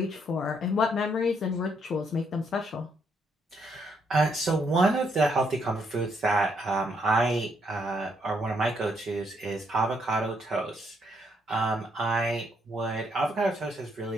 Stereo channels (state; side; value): normal; both; correlation 0.73